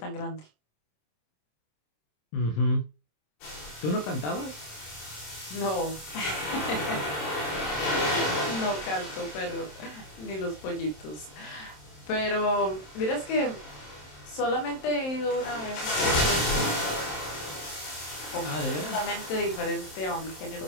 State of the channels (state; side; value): late; right; 27 ms